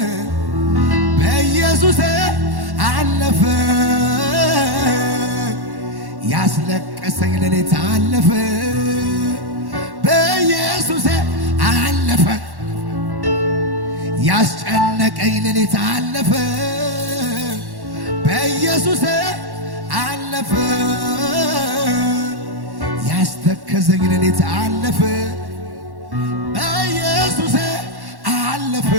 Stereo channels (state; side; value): late; left; 1.1 ms